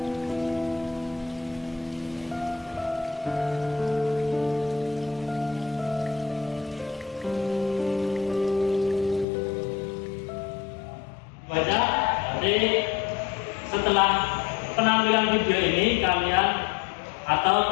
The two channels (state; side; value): drops out; right; at 9.2 s